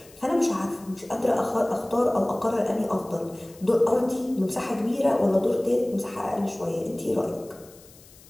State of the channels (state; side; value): noise; left; hiss, 24 dB below the sound